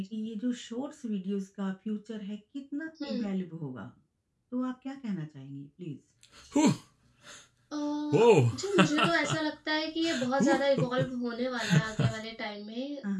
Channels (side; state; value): both; identical; correlation 1.00